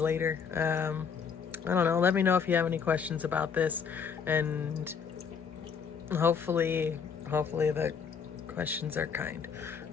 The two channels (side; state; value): right; quieter; 6.4 dB